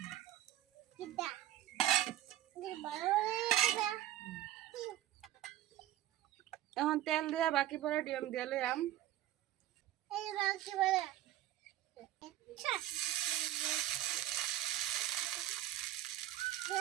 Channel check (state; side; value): quieter; left; 13.6 dB